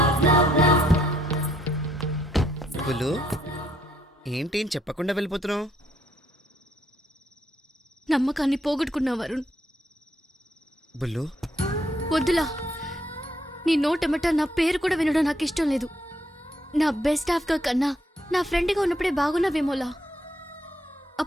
Bulu, ఏంటి ఏం చెప్పకుండా వెళ్ళిపోతున్నావు? నమ్మకాన్ని పోగొట్టుకున్నావు వరుణ్. బుల్లు, వద్దులా. నీ నోటెమట నా పేరు కూడా వినడం నాకు ఇష్టం లేదు. నా బెస్ట్ హాఫ్గా కన్నా నా ఫ్రెండ్గా ఉన్నప్పుడే బాగున్నావేమోలా.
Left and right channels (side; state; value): both; normal; correlation 0.71